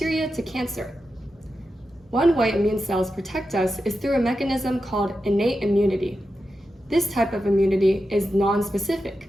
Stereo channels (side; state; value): both; normal; correlation 0.90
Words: to cancer. One way immune cells protect us is through a mechanism called innate immunity. This type of immunity is non-specific,